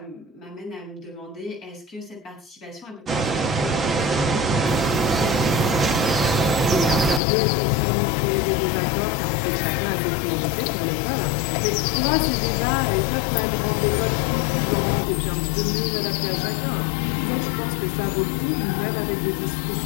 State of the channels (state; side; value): drops out; right; at 7.2 s